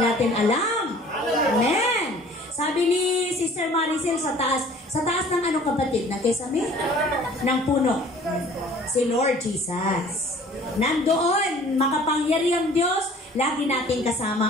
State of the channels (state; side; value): normal; both; correlation 0.51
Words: alam. Amen. Sabi ni Sister Maricel sa taas ng ano kapatid, na kesame? Ng puno. Si Lord Jesus. Nandoon, makapangyarihang Diyos, lagi natin